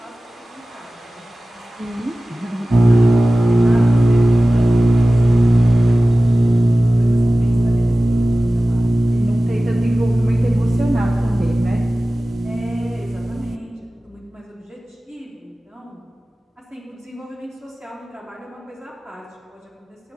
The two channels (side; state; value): both; normal; correlation 0.96